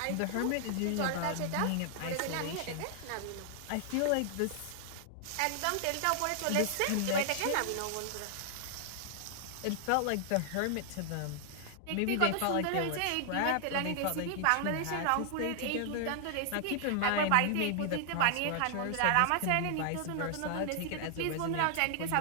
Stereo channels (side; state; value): both; different; correlation -0.01